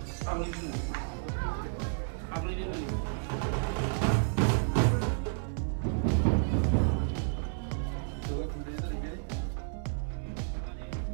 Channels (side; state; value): left; silent; 57 dB below the other